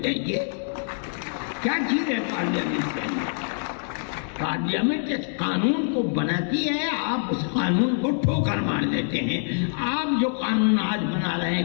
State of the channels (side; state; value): right; silent; 60 dB below the other